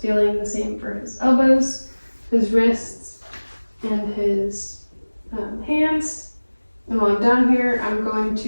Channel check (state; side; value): inverted; both; correlation -1.00